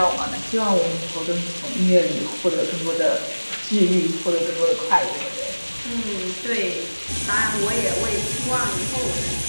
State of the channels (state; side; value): inverted; both; correlation -1.00